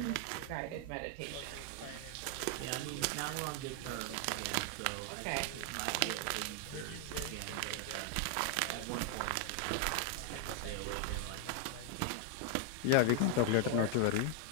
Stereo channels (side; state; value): both; different; correlation 0.00